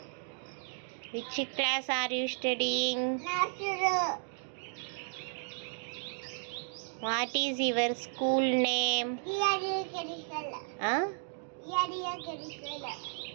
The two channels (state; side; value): silent; left; 55 dB below the other